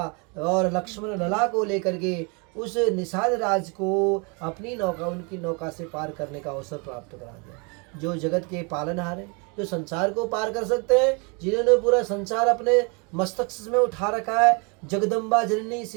और लक्ष्मण लला को लेकर के उस निषाद राज को अपनी नौका, उनकी नौका से पार करने का अवसर प्राप्त करा दिया। जो जगत के पालनहार हैं, जो संसार को पार कर सकते हैं, जिन्होंने पूरा संसार अपने मस्तक में उठा रखा है, जगदम्बा जननी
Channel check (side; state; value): left; quieter; 32.7 dB